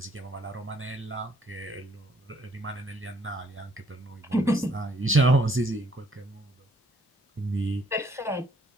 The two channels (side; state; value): both; normal; correlation 0.65